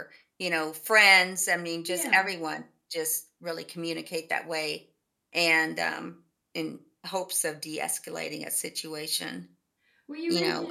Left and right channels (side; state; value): both; identical; correlation 1.00